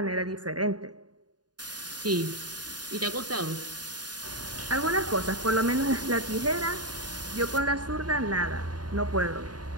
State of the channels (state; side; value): late; left; 0.69 ms